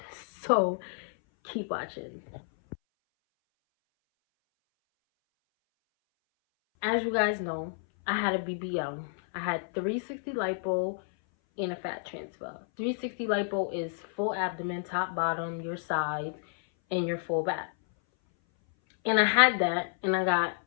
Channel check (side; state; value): right; silent; 58 dB below the other